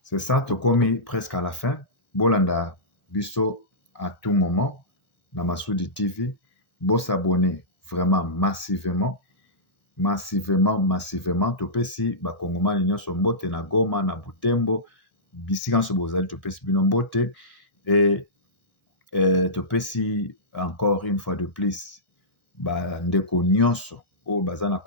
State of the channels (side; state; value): right; late; 1.0 ms